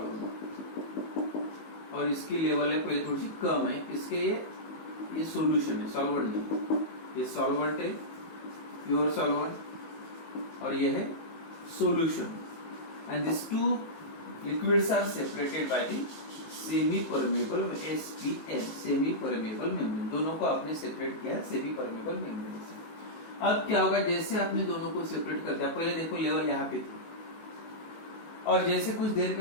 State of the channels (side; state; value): right; late; 19 ms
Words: और इसकी लेवल है पहले थोड़ी सी कम है, इसके ये सॉल्यूशन है, सॉल्वेंट नहीं, ये सॉल्वेंट है प्योर सॉल्वेंट, और ये है solution, and these two liquids are separated by the semi permeable SPM, semi permeable membrane। दोनों को आपने सेपरेट किया सेमी परमेबल मेम्ब्रेन से। अब क्या होगा, जैसे आपने दोनों को सेपरेट कर दिया, पहले देखो लेवल यहाँ पे थी, और जैसे कुछ देर के